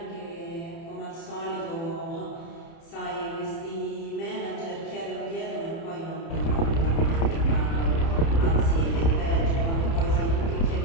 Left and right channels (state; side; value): late; right; 30 ms